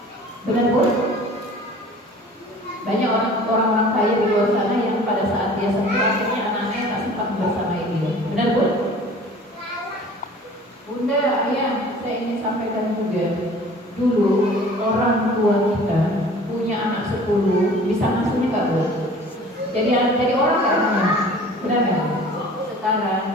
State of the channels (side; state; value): both; normal; correlation 0.47